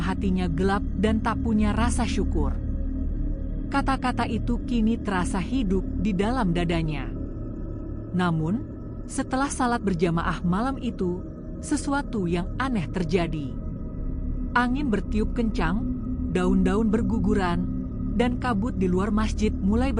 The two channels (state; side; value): identical; both; correlation 1.00